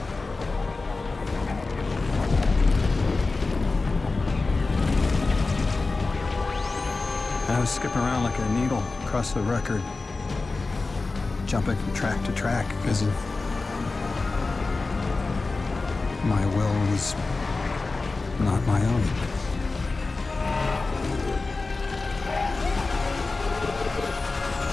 I was skipping around like a needle across the record, jumping from track to track because of my will was not my own.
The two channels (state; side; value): quieter; right; 3.7 dB